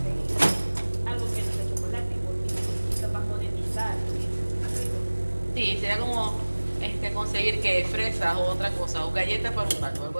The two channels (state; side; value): inverted; both; correlation -1.00